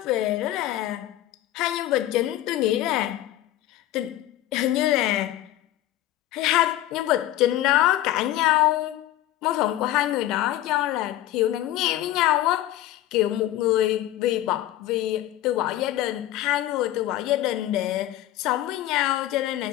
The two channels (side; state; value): right; quieter; 14.2 dB